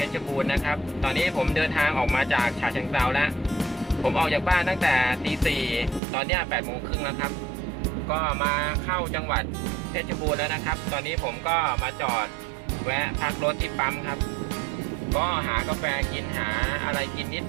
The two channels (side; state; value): left; drops out; at 6.0 s